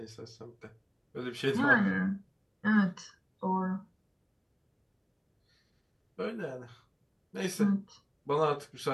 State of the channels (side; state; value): both; identical; correlation 1.00